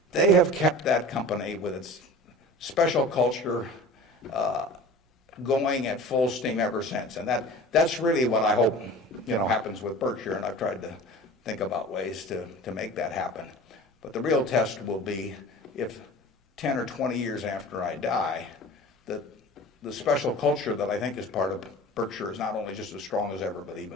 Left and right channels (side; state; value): both; normal; correlation 0.39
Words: they have kept that company with its special culture going at full steam ever since. And that's really what I hope happens with Berkshire, and I've tried to think about ways to make that happen. But the real test will be if 10 or 20 years after I die, that the special culture that I think is part of Berkshire is not only just as strong as ever, but